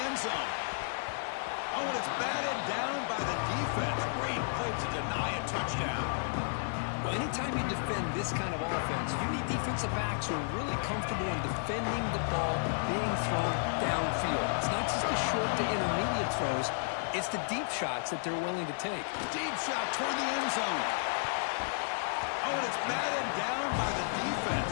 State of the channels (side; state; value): right; silent; digital silence